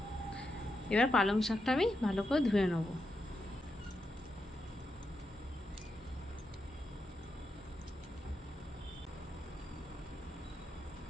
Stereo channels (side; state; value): both; normal; correlation 0.85